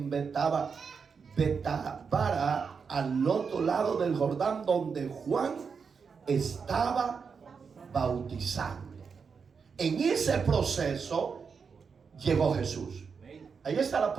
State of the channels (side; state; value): left; quieter; 5.8 dB